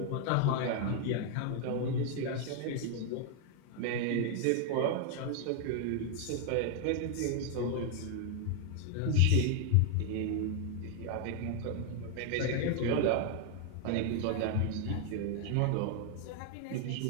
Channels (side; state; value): both; different; correlation 0.00